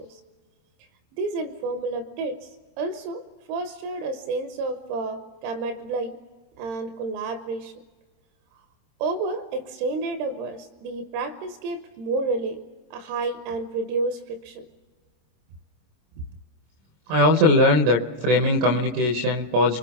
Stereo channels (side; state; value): left; late; 26 ms